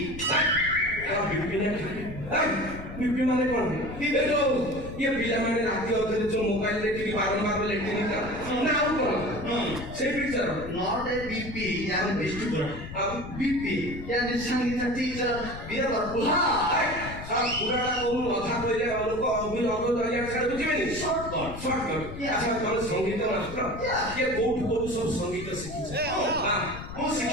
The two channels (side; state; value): left; noise; rumble, 11 dB below the sound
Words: बीपी माने कौन है? ये पिला माने राती अधरे जो मोबाइल देखिकी बारंबार लेटिन का ना और कौन से पिक्चर नॉट ए बीपी यानी वेस्टिबुलर बीपी यानी संगीत टीचर बीरबर बुहा सब पुराना कोन अधा कइले लोक अभी अगो दलिया छाड़ बुझिबेनी शॉर्टकट अच्छा तोर संगीत मास्टर ये कोठ सब संगीत शिखि हां ମୁଁ